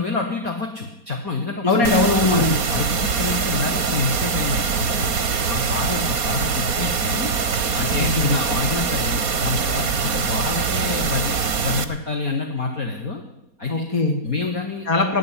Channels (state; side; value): late; left; 4.2 ms